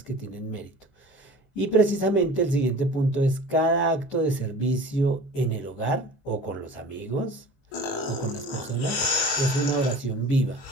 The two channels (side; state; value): right; late; 21 ms